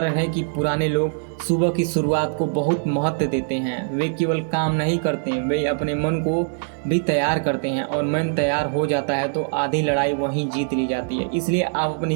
है कि पुराने लोग सुबह की शुरुआत को बहुत महत्व देते हैं। वे केवल काम नहीं करते हैं, वे अपने मन को भी तैयार करते हैं और मन तैयार हो जाता है तो आधी लड़ाई वहीं जीत ली जाती है। इसलिए आप अपने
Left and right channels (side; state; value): left; silent; 64 dB below the other